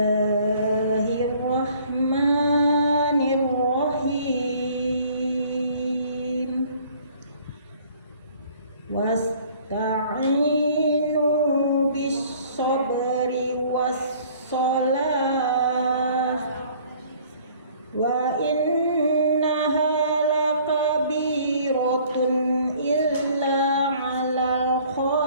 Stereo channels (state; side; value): inverted; both; correlation -0.55